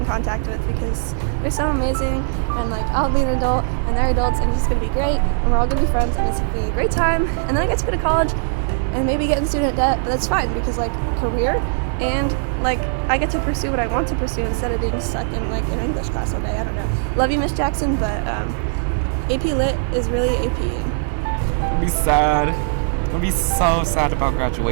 contact with because they're so amazing, and like I'll be an adult and they're adults, and it's just gonna be great, and we're all gonna be friends, and it's gonna be a great time. And then I get to go to college and maybe get in student debt, but that's fine because like career, and like I get to pursue what I want to pursue instead of being stuck in like an English class all day. I don't know. Love you, Miss Jackson, but AP Lit is really APing. I'll be sad. I'll be so sad about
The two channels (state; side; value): silent; left; 66 dB below the other